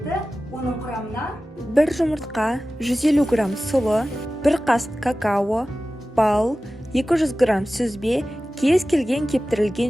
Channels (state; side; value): normal; both; correlation 0.96